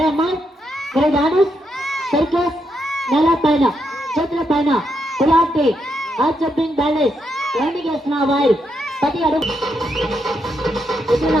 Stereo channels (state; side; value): normal; both; correlation 0.80